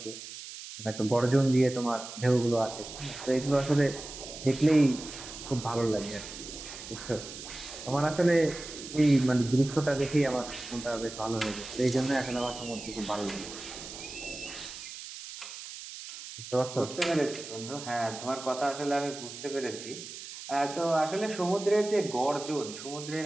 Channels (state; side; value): noise; right; hiss, 12 dB below the sound